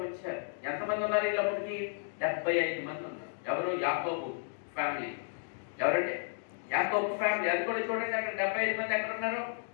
వచ్చారు. ఎంతమంది ఉన్నారు వీళ్ళప్పటికి? 75 మంది ఉన్నారు. ఎవరు? యాకోబు ఫ్యామిలీ. ఎవరంటే యాకోబు ఫ్యామిలీ. అది కూడా చూడండి, అక్కడ 75 మంది ఎక్కడ ఉన్నారు?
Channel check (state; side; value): silent; right; digital silence